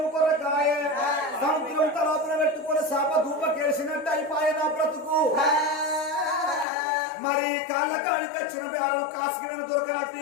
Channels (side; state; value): right; drops out; at 6.7 s